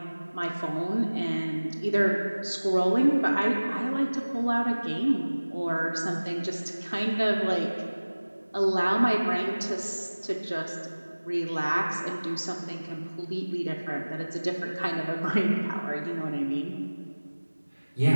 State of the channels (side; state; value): both; inverted; correlation -1.00